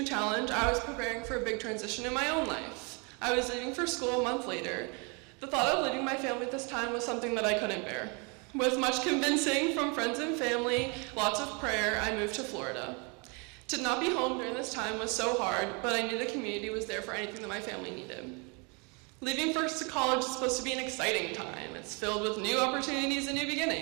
challenge, I was preparing for a big transition in my own life. I was leaving for school a month later. The thought of leaving my family at this time was something that I couldn't bear. With much convincing from friends and family, lots of prayer, I moved to Florida. To not be home during this time was so hard, but I knew the community was there for anything that my family needed. Leaving first to college is supposed to be an exciting time. It's filled with new opportunities and new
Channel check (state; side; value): quieter; left; 32.5 dB